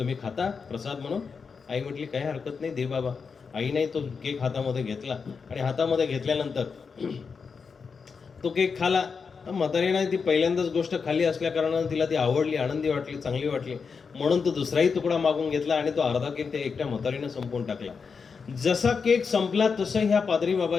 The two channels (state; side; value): quieter; right; 5.5 dB